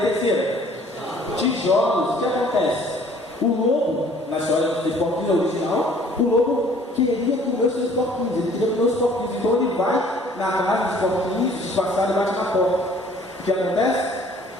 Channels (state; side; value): normal; both; correlation 0.55